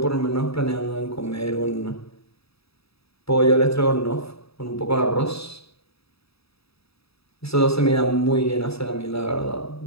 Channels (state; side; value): late; right; 0.77 ms